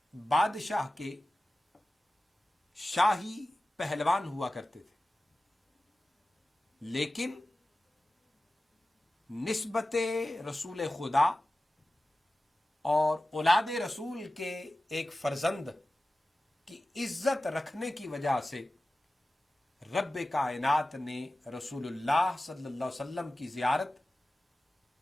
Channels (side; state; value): both; normal; correlation 0.95